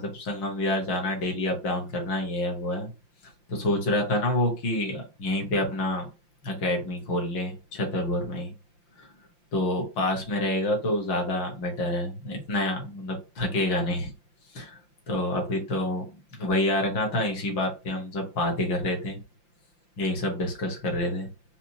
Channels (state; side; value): late; right; 5.8 ms